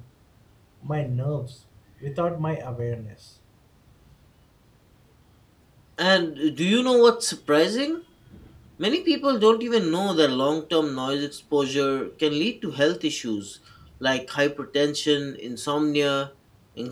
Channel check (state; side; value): identical; both; correlation 1.00